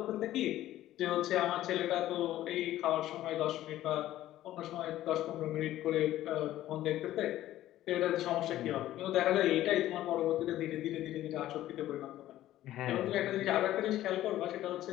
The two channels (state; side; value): quieter; right; 14.0 dB